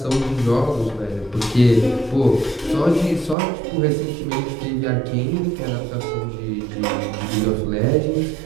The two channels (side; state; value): left; drops out; at 3.4 s